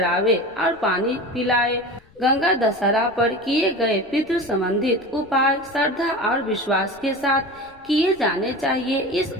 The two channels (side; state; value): left; noise; rumble, 29 dB below the sound